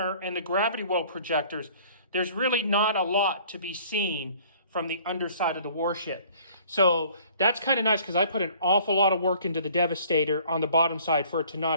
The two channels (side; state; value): both; inverted; correlation -0.54